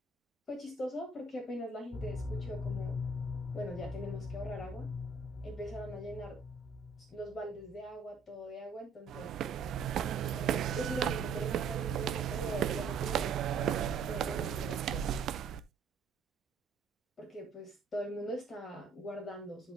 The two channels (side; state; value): left; quieter; 4.4 dB